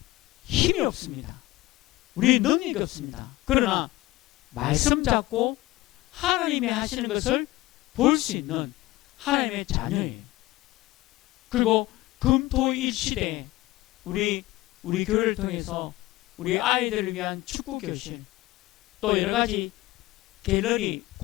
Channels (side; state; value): right; quieter; 18.4 dB